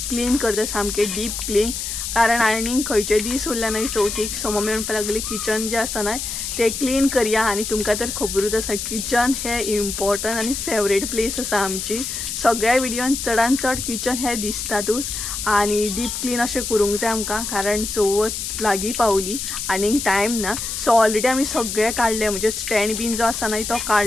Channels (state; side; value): noise; left; hiss, 4 dB below the sound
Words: क्लीन करता, सामके डीप क्लीन. कारण आनीक खंयचे दीस उरले नाही चवथीक. सो मम्मी म्हणपाक लागली किचन जे आसा नाही ते क्लीन करूया. आणि तुमकां तर खबरूच आसा किचन हे इम्पॉर्टंट आणि फेवरेट प्लेस आसा आमची. सगळ्या विडियोन चडान चड किचन हे दिसतातूच. आणि डीप क्लीन अशें करूंक जाय आमकां, कारण चवथ लागीं पावली आनीक टायम ना. सो ऑलरेडी आमी सगळे काडले, म्हणजे स्टँड बीन जो आसा न्हय तो